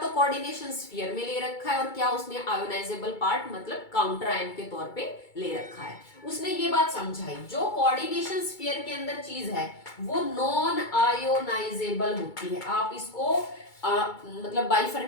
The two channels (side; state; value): right; late; 2.3 ms